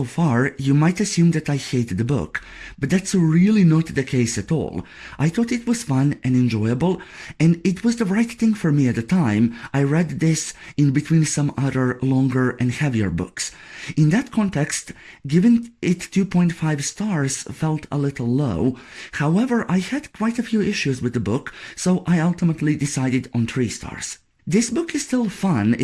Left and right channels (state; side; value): identical; both; correlation 1.00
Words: far, you might assume that I hate the book, but that's really not the case at all. I thought it was fun and enjoyable, and it was the right thing for me at the time. I read this in between some other longer and heavier books. In that context, giving it 2.5 stars felt a little low. However, I had quite a few issues with the book, so I ultimately decided on 3 stars. This book is still fun.